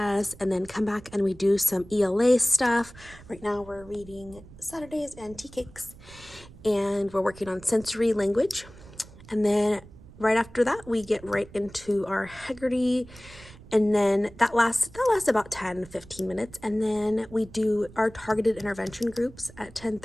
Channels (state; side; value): noise; right; rumble, 20 dB below the sound